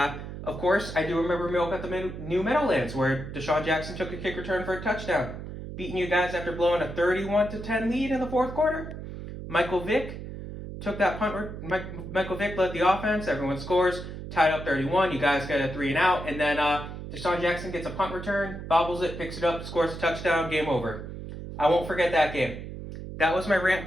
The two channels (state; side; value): noise; right; hum, 9 dB below the sound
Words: course, I do remember Miracle at the New Meadowlands where Deshaun Jackson took a kick return for a touchdown, beating you guys after blowing a 31-10 lead in the fourth quarter. Michael Vick, took that punt. Michael Vick led the offense. Everyone scores. Tied up 31. You guys get a 3 and out. And then Deshaun Jackson gets a punt return, bobbles it, picks it up, scores a touchdown. Game over. I won't forget that game. That was my rant